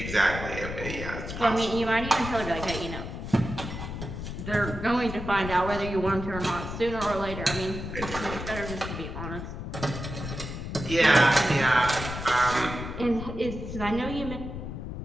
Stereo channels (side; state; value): left; noise; rumble, 7 dB below the sound